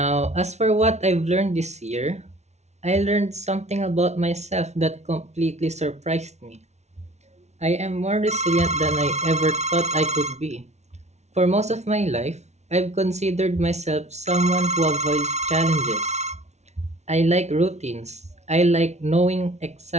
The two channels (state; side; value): late; left; 0.32 ms